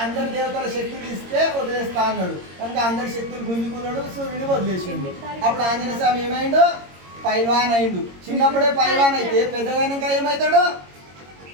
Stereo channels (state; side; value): late; left; 22 ms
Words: అందరి దేవతల శక్తులు ఇస్తే వదిలేస్తా అన్నాడు కనుక అందరి శక్తులు గుంజుకున్నాడు, సూర్యుని వదిలేసిండు. అప్పుడు ఆంజనేయ స్వామి ఏమైండు? పైల్వాన్ అయిండు. చిన్నప్పుడే పైల్వాన్ అయితే పెద్దగైనాక ఏమవుతాడు?